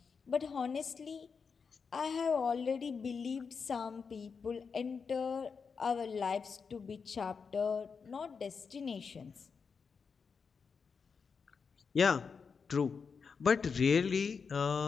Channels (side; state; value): right; quieter; 5.6 dB